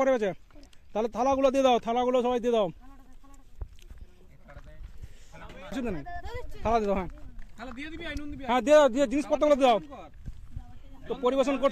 গেছে? তাহলে থালাগুলো দিয়ে দাও, থালাগুলো সবাই দিয়ে দাও। থালা দিয়ে দাও, হ্যাঁ দিয়ে দাও, দিয়ে জিনিসপত্রগুলো দিয়ে দাও। তো পরিবেশন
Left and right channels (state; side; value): identical; both; correlation 1.00